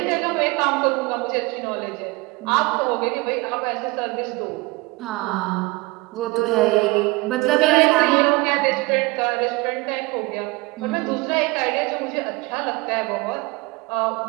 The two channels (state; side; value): quieter; left; 23.8 dB